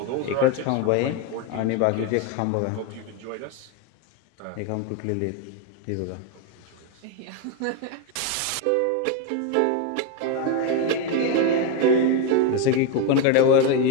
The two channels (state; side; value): different; both; correlation 0.02